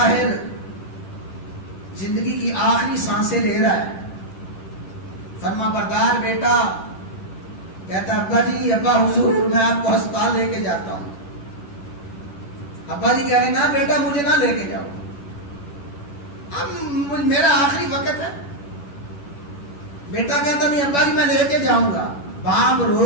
زندگی کی آخری سانسیں لے رہا ہے، فرما بردار بیٹا کہتا، ابا جی، ابا حضور میں آپ کو ہسپتال لے کے جاتا ہوں۔ ابا جی کہہ رہے، نہ بیٹا مجھے نہ لے کے جاؤ، اب میرا آخری وقت ہے۔ بیٹا کہتا، نہیں ابا جی میں لے کے جاؤں گا۔ باپ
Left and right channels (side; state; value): right; late; 11 ms